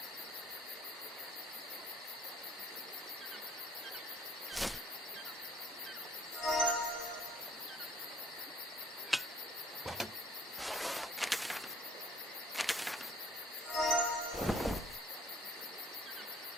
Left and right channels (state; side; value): normal; both; correlation 0.58